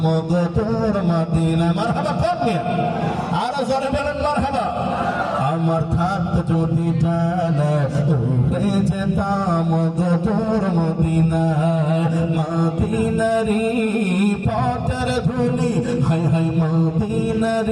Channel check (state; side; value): identical; both; correlation 1.00